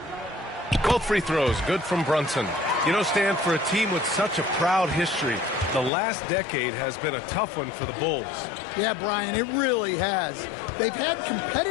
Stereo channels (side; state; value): right; drops out; at 5.9 s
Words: Both free throws good from Brunson. You know, Stan, for a team with such a proud history, the last decade has been a tough one for the Bulls. Yeah, Brian, it really has. They've had